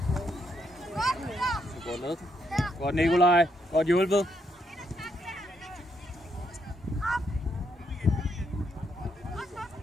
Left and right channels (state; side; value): normal; both; correlation 0.76